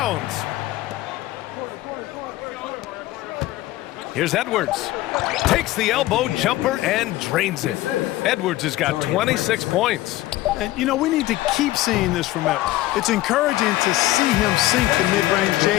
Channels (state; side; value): quieter; right; 16.5 dB